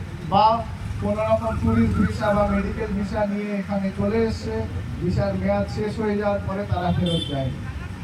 বা কোনো রকম ট্যুরিস্ট ভিসা বা মেডিকেল ভিসা নিয়ে এখানে চলে এসছে, ভিসার মেয়াদ শেষ হয়ে যাওয়ার পরে তারা ফেরত যায়।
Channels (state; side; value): identical; both; correlation 1.00